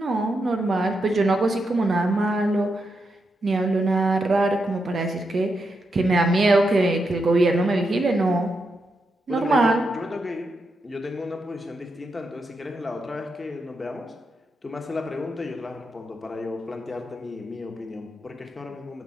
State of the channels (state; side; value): normal; both; correlation 0.84